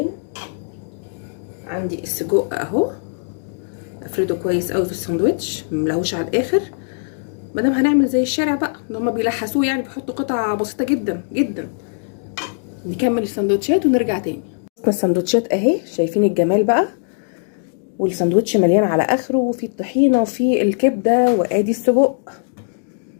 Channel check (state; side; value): silent; right; digital silence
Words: عندي السجق اهو، افرده كويس قوي في الساندوتش، مملهوش على الاخر. مادام هنعمل زي الشارع بقى اللي هما بيلحسوه، يعني بيحطوا قطع بسيطه جدا جدا. نكمل السندوتشات ونرجع تاني. السندوتشات اهي، شايفين الجمال بقى، والساندوتش مليان على اخره، وفي الطحينه وفي الكبده، وادي السجق.